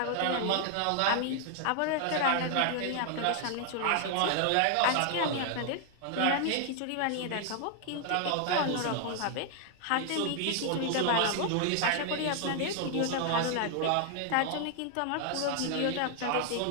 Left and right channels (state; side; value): different; both; correlation 0.00